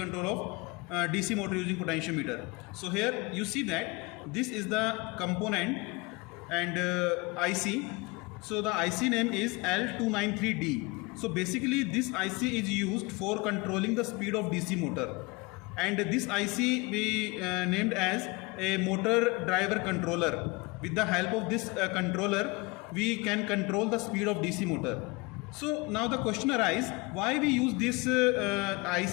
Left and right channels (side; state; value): right; quieter; 26.1 dB